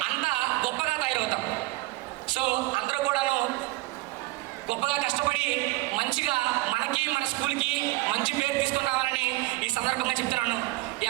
అంత గొప్పగా తయారవుతాం. సో అందరూ కూడాను గొప్పగా కష్టపడి మంచిగా మనకి, మన స్కూల్కి మంచి పేరు తీసుకొని రావాలని ఈ సందర్భంగా చెప్తున్నాను. ఈ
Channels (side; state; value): left; quieter; 20.6 dB